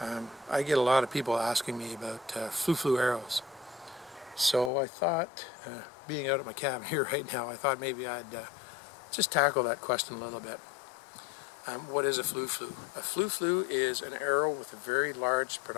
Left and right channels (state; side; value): drops out; right; at 4.7 s